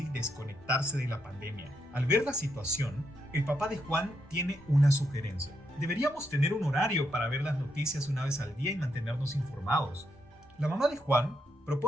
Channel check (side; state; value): both; normal; correlation 0.80